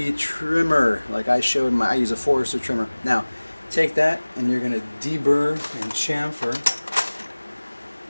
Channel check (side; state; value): both; inverted; correlation -1.00